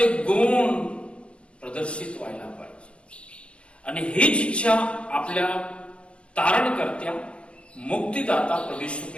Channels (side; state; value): right; late; 0.059 ms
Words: गुण प्रदर्शित व्हायला पाहिजे. आणि हीच इच्छा आपल्या तारणकर्त्या मुक्तिदाता प्रभू येशू